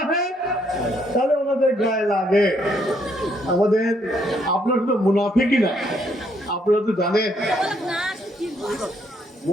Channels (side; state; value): both; normal; correlation 0.71